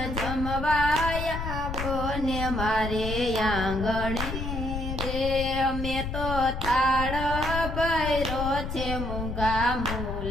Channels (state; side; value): noise; left; rumble, 5 dB below the sound